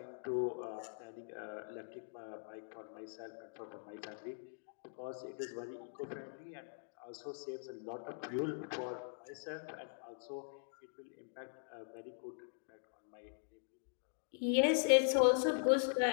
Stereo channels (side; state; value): right; silent; digital silence